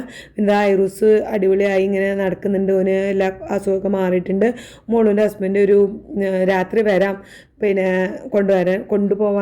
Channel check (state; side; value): identical; both; correlation 1.00